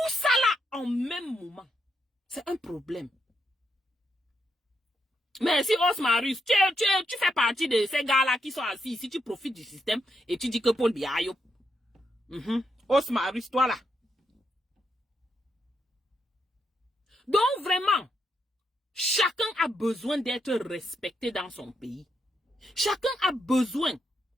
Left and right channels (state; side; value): normal; both; correlation 0.80